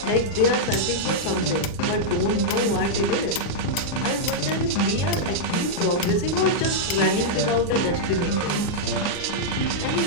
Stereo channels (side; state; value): right; late; 39 ms